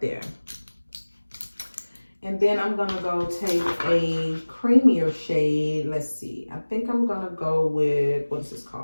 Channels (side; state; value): both; inverted; correlation -1.00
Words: there. And then I'm gonna go take a creamier shade. Let's see, I think I'm gonna go with, what is this